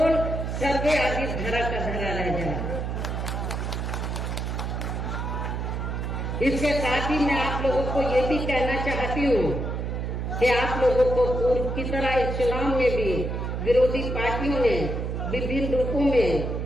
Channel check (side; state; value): right; noise; hum, 3 dB below the sound